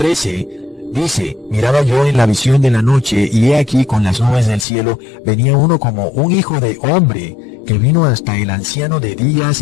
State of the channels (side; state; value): right; drops out; at 4.7 s